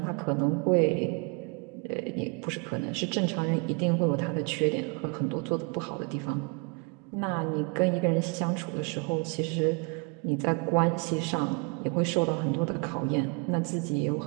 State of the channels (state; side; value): quieter; left; 33.2 dB